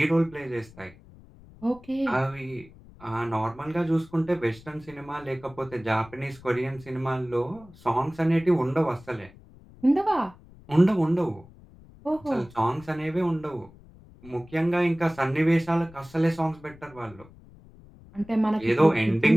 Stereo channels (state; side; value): noise; left; rumble, 23 dB below the sound